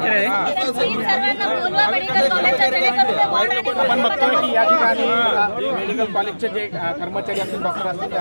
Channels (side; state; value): both; inverted; correlation -1.00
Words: सर्वांना बोलवा मेडिकल कॉलेजच्या जेणेकरून ते वॉर्ड आणि आपण बघतोय की या ठिकाणी मेडिकल कॉलेजचे जे कर्मचारी असतील डॉक्टर असतील ते